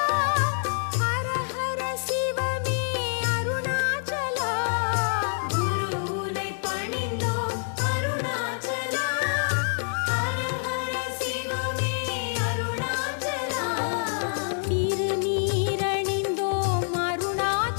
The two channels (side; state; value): right; silent; digital silence